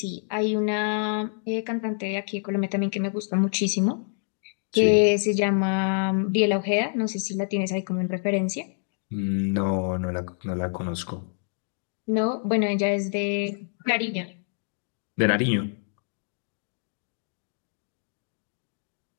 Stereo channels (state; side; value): silent; right; 60 dB below the other